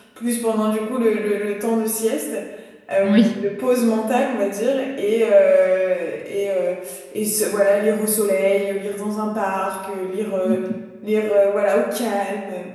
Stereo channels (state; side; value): identical; both; correlation 1.00